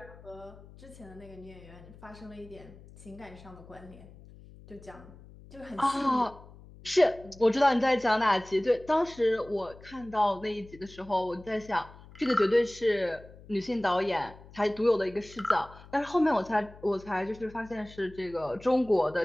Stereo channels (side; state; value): left; noise; hum, 20 dB below the sound